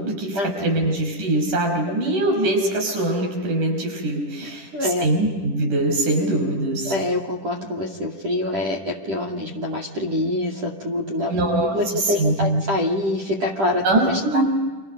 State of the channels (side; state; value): left; late; 10 ms